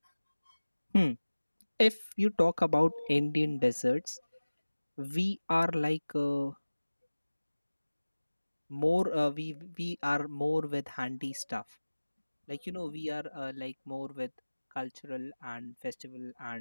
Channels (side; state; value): both; inverted; correlation -1.00